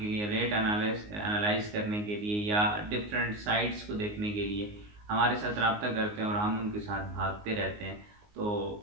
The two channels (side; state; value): left; late; 19 ms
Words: लिए, रेट एनालाइज करने के लिए या डिफरेंट साइट्स को देखने के लिए हमारे साथ रब्ता करते हैं और हम उनके साथ भागते रहते हैं। तो